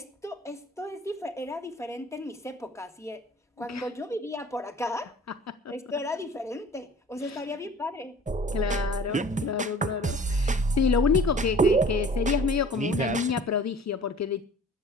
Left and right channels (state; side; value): normal; both; correlation 0.46